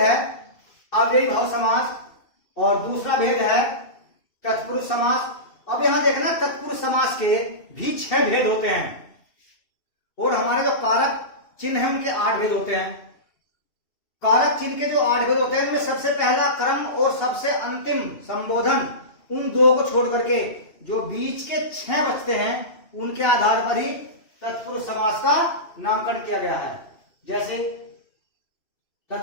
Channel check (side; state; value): right; late; 2.6 ms